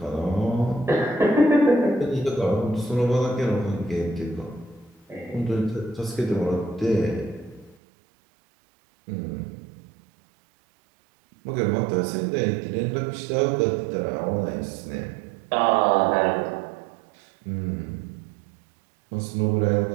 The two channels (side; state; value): left; drops out; at 7.8 s